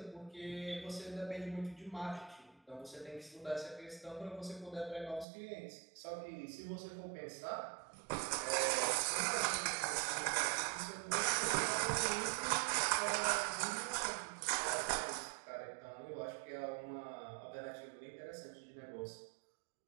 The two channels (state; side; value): drops out; left; at 5.2 s